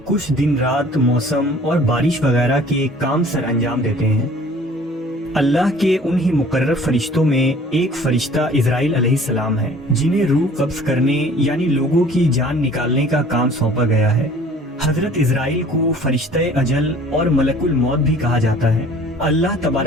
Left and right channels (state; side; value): normal; both; correlation 0.50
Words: کچھ دن رات موسم اور بارش وغیرہ کے کام سر انجام دیتے ہیں۔ اللہ کے انہی مقرر فرشتوں میں ایک فرشتہ اسرائیل علیہ السلام ہے، جنہیں روح قبض کرنے یعنی لوگوں کی جان نکالنے کا کام سونپا گیا ہے۔ حضرت اسرائیل کو فرشتہ اجل اور ملک الموت بھی کہا جاتا ہے۔ اللہ